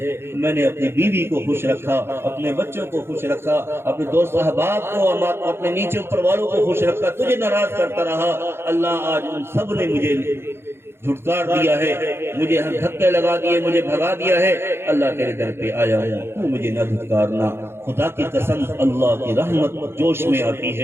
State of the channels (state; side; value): late; left; 0.12 ms